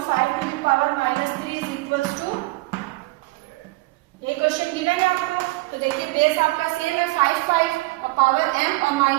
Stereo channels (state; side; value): quieter; left; 22.2 dB